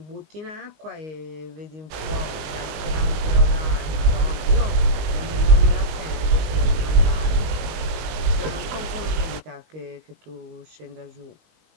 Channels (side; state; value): left; late; 20 ms